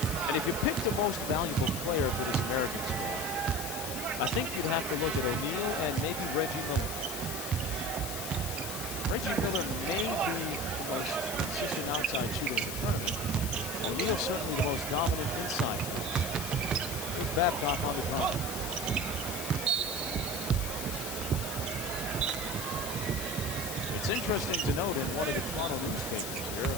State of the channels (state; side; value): noise; left; hiss, 5 dB below the sound